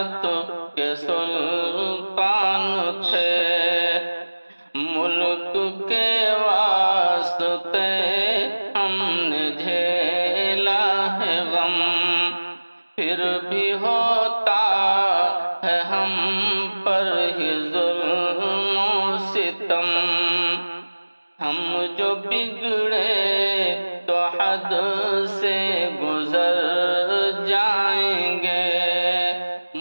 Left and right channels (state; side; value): inverted; both; correlation -1.00